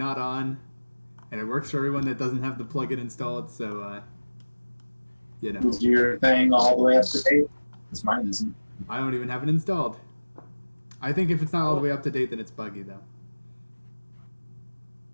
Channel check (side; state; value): both; inverted; correlation -1.00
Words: on, and it works for everyone that doesn't have the plugin installed. So you know, Is your thing all the way up to date? Because mine isn't. I don't even have it installed. I think if it's not all the way up to date, then it's buggy though.